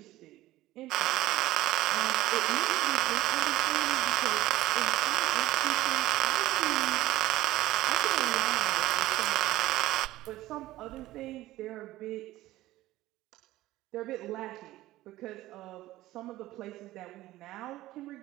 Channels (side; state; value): left; quieter; 16.3 dB